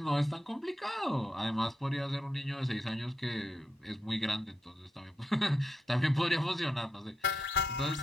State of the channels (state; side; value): normal; both; correlation 0.85